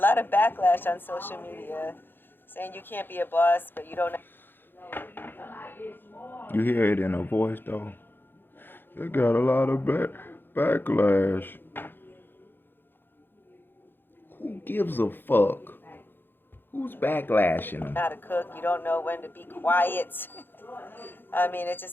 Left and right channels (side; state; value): right; late; 0.099 ms